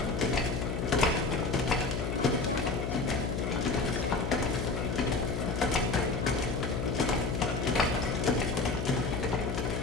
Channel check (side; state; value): left; noise; hum, 2 dB below the sound